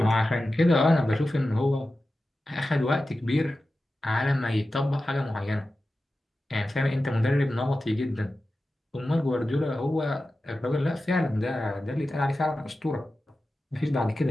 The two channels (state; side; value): normal; both; correlation 0.93